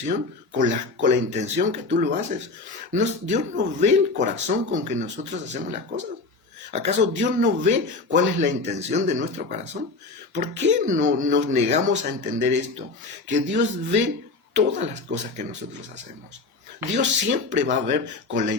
con la intención que tú lo haces. Dios no ve el corazón con que nosotros hacemos las cosas. ¿Acaso Dios no ve cuál es la intención de nuestro corazón? ¿Por qué no nos negamos a entender esto? Que Dios ve todas las cosas que nosotros hacemos. Dios siempre va a ver con la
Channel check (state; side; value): quieter; right; 3.7 dB